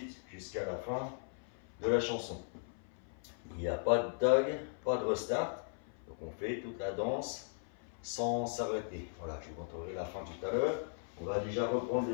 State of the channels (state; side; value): silent; right; 53 dB below the other